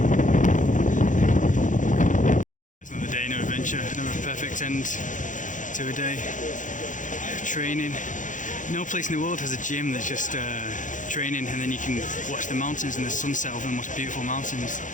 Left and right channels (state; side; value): late; right; 0.37 ms